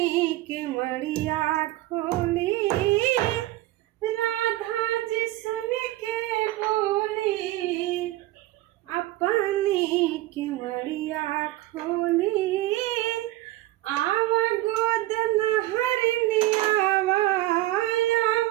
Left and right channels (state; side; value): quieter; left; 16.8 dB